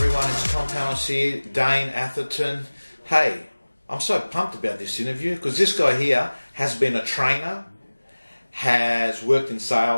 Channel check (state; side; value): inverted; both; correlation -1.00